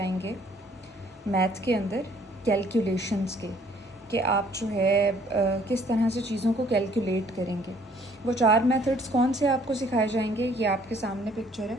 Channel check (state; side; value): normal; both; correlation 0.60